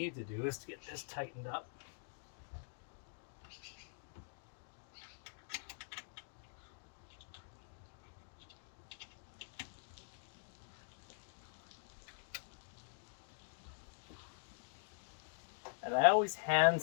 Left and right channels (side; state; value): right; silent; digital silence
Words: to do is to get this tightened up. And I always hand